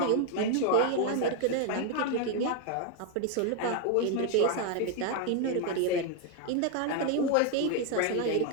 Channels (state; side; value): different; both; correlation 0.01